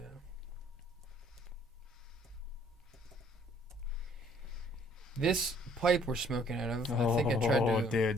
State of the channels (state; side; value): normal; both; correlation 0.60